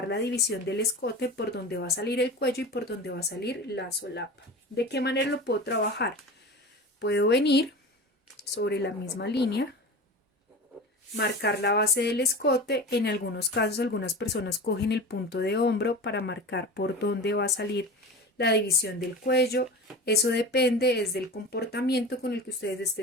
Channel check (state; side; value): normal; both; correlation 0.32